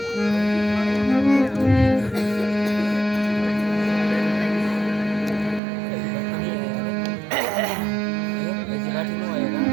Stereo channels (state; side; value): drops out; left; at 5.6 s